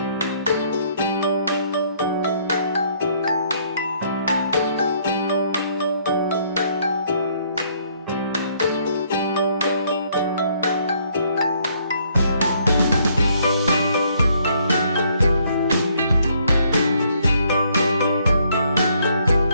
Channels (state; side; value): inverted; both; correlation -0.67